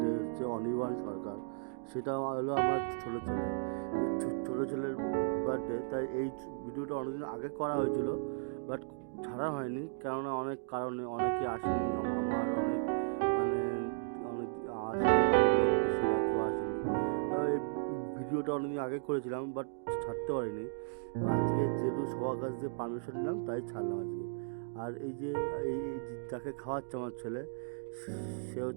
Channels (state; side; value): silent; left; digital silence